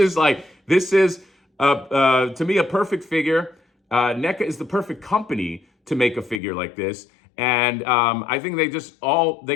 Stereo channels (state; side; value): drops out; right; at 6.4 s